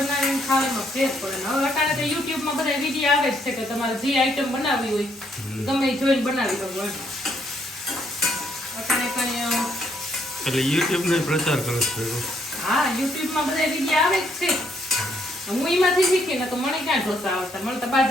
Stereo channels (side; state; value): both; normal; correlation 0.71